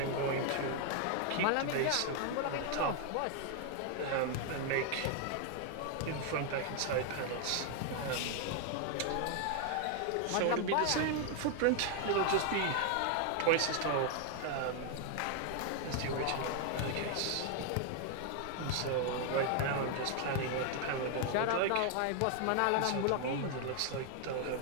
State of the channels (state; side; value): different; both; correlation 0.00